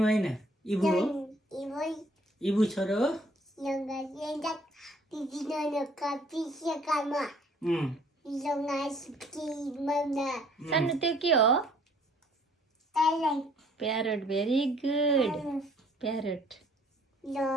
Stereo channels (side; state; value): both; normal; correlation 0.59